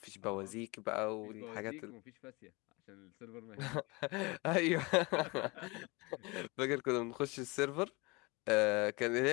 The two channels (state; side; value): quieter; right; 26.2 dB